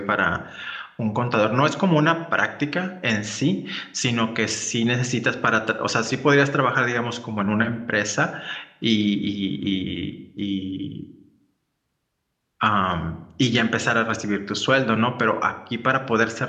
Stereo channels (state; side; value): identical; both; correlation 1.00